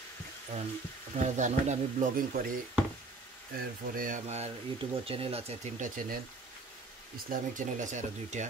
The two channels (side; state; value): left; quieter; 3.6 dB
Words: কারণ আপনারা জানেন আমি ব্লগিং করি এরপরে আমার ইউটিউবের চ্যানেল আছে 3টা চ্যানেল ইসলামিক চ্যানেল আছে আরও 2টা